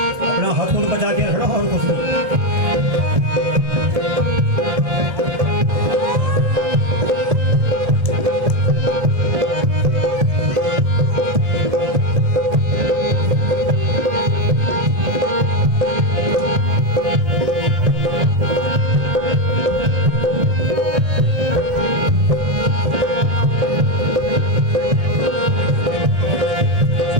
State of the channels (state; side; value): late; left; 1.7 ms